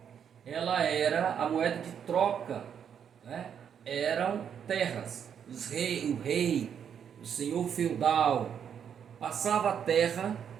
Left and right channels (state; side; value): quieter; left; 8.1 dB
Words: ela era a moeda de troca, né? Eram terras. O rei, o senhor feudal, passava a terra